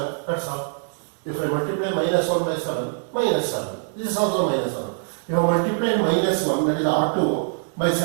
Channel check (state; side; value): silent; left; digital silence